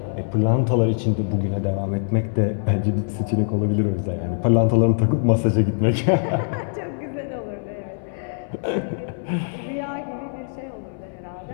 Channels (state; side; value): silent; right; 63 dB below the other